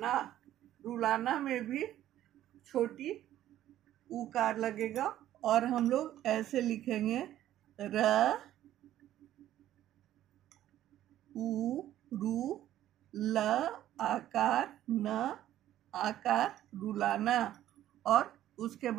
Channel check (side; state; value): left; quieter; 12.8 dB